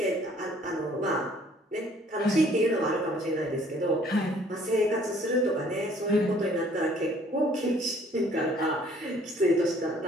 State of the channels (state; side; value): normal; both; correlation 0.58